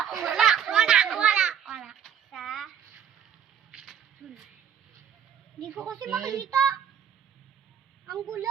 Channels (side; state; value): left; quieter; 8.7 dB